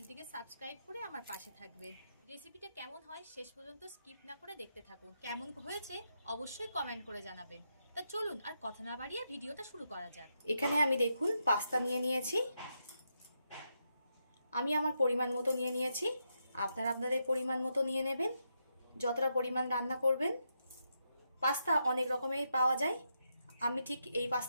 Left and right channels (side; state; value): both; inverted; correlation -0.83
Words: সাবস্ক্রাইব করে আমার পাশে থাকবেন। রেসিপিটা কেমন হয় শেষ পর্যন্ত স্কিপ না করে দেখতে থাকুন। কেমন হয়েছে অবশ্যই কমেন্ট করে জানাবেন। তা চলুন আর কথা না বাড়িয়ে ভিডিওটা শুরু করা যাক। এখানে আমি দেখুন পাস্তা নিয়ে নিয়েছি। আমি আমার পরিমাণ মতো নিয়ে নিয়েছি, আপনারা আপনাদের পরিমাণ মতো নিয়ে নেবেন, যতটা পরিমাণ রান্না করবেন। পাস্তা অনেক রকমের পাওয়া যায়, আমি ঠিক এই